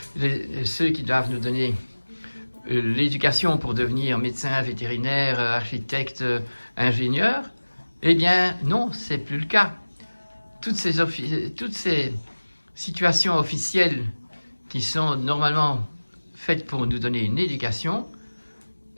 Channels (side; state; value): both; inverted; correlation -1.00